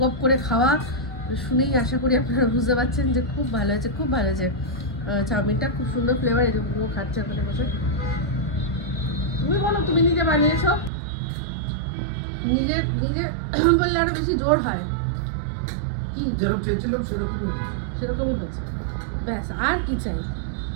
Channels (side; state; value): left; drops out; at 10.9 s